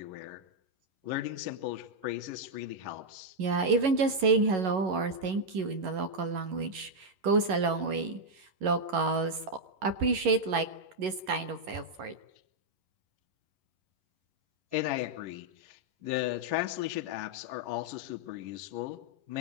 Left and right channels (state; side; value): late; left; 11 ms